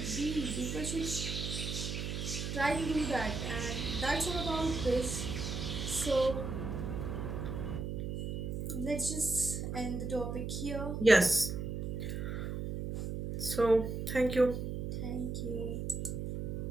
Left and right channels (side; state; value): right; noise; hum, 3 dB below the sound